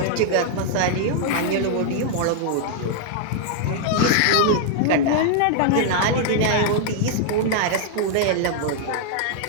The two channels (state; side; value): different; both; correlation 0.00